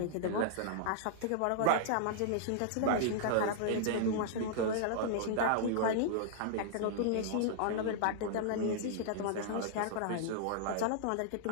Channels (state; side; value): different; both; correlation -0.01